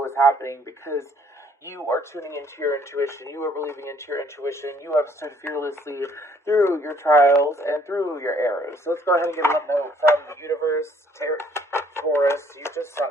is happening, because you are tuning into your intuition. You are believing into your intuition. You have stood fearlessly through your trials and through your errors. So let's go ahead and get a love note from the universe, Taurus. You just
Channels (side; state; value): both; normal; correlation 0.62